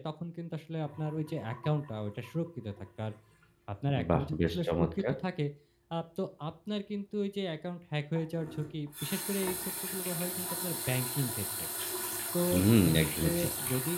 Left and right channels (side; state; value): both; identical; correlation 1.00